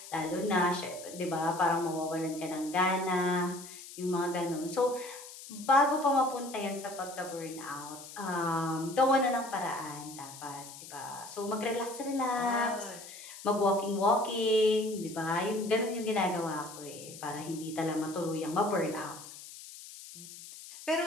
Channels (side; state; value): left; noise; hiss, 15 dB below the sound